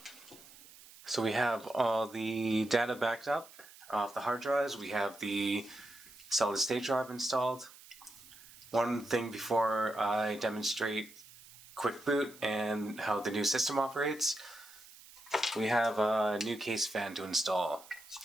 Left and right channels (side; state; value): right; noise; hiss, 20 dB below the sound